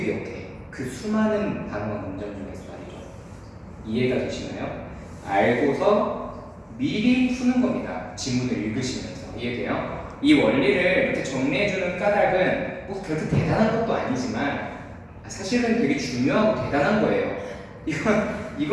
기억해? 그 수많은 단어와 문장 중에서 말이죠. 이해가 되시나요? 알고서 미리 푸는 겁니다. 지문을 읽으시면서. 이해돼요? 이 원리를 이렇게 정리해주는 까닭은 뭐 그렇게 대단한 것도 아니지만 사실은 되게 중요하고 대단한 거예요.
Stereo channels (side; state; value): both; identical; correlation 1.00